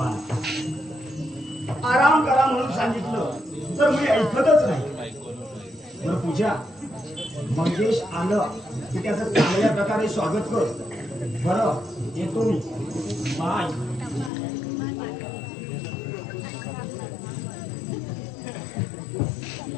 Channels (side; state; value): right; drops out; at 14.3 s